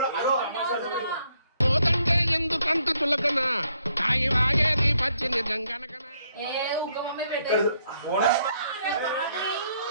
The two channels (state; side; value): inverted; both; correlation -0.72